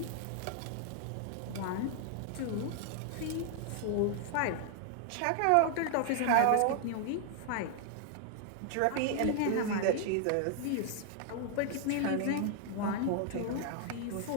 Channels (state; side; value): different; both; correlation 0.00